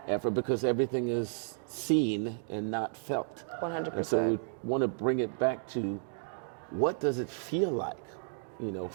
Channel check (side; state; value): left; silent; digital silence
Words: effort, because everything is seen and not felt. 100%. And so we want to bring it back to, what does it feel like?